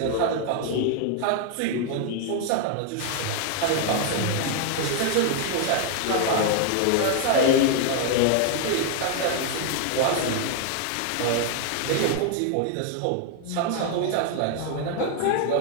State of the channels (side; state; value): both; different; correlation 0.00